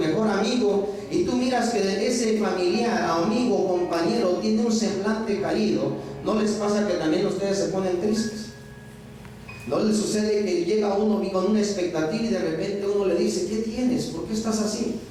amigo, y tú miras que ese familiar, amigo, compañero, tiene un semblante caído, ¿no les pasa que también ustedes se ponen tristes? ¿No les sucede que llega uno con una expectativa y de repente uno le dice, ¿qué tienes? ¿Por qué estás así?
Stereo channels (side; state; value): both; identical; correlation 1.00